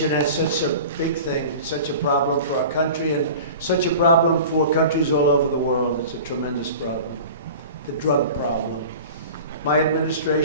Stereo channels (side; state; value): both; inverted; correlation -0.38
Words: has such a big thing, such a problem for our country, and such a problem for countries all over the world. It's a tremendous problem, the drug problem. My